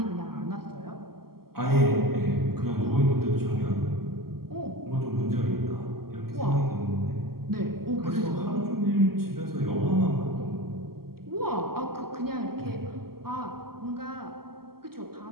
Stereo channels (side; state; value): left; late; 0.94 ms